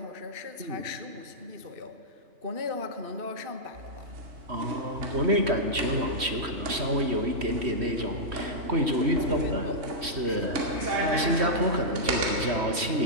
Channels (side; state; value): left; late; 3.1 ms